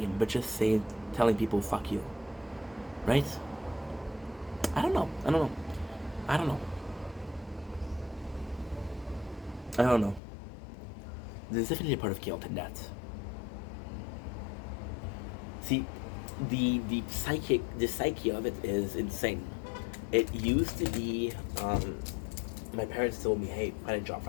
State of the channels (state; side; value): drops out; right; at 10.2 s